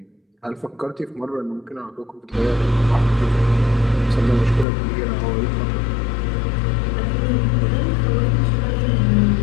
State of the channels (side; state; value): right; drops out; at 4.7 s